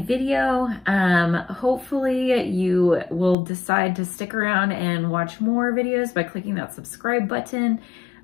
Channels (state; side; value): drops out; right; at 3.4 s